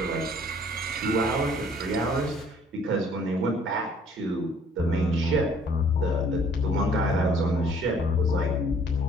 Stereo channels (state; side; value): normal; both; correlation 0.58